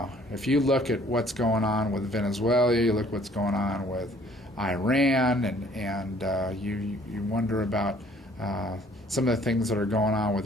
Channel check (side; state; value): both; normal; correlation 0.58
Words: If you look at what's going on with Venezuela, you look what's going on with Iran, and you wonder about some of the things that are going on